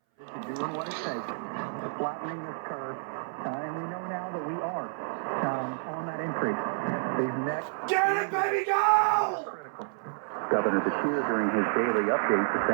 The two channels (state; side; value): silent; left; 58 dB below the other